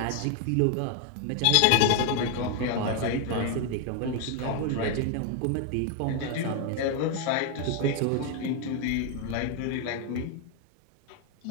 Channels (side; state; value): both; different; correlation 0.01